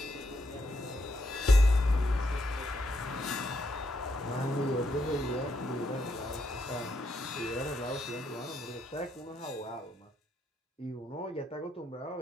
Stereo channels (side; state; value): both; normal; correlation 0.78